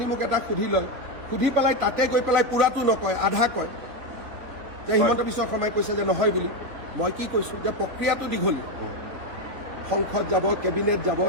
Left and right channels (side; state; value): left; late; 3.9 ms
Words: মোক এটা সুধি লয়, সুধি পেলাই তাতে গৈ পেলাই পূৰাটো নকয়, আধা কয় যে হিমন্ত বিশ্ব শৰ্মাই কৈছে যে নহয় বুলি। মই কি কৈছোঁ যে প্ৰক্ৰিয়াটো দীঘলীয়া, সংসদ যাব, কেবিনেট যাব,